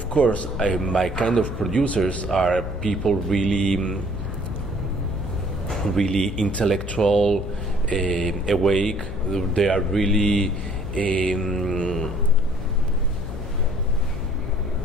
course, my kind of producers are people really intellectual, awake. They are really they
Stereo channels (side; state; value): left; noise; hum, 8 dB below the sound